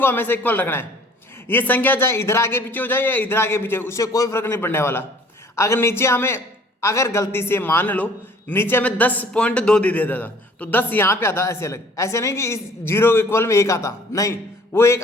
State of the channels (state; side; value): normal; both; correlation 0.54